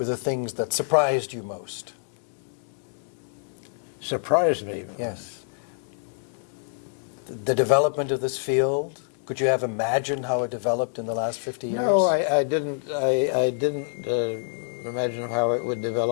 the things that surprised you most? Surprised me? Yes. The development of this field? Could you have imagined how it developed in the last 50 years? No, I didn't. I didn't imagine how it would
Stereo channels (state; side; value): silent; right; digital silence